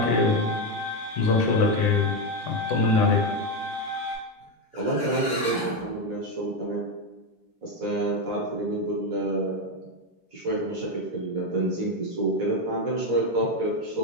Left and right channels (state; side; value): normal; both; correlation 0.09